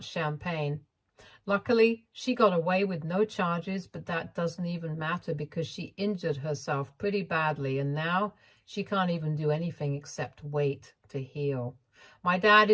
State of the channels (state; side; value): identical; both; correlation 1.00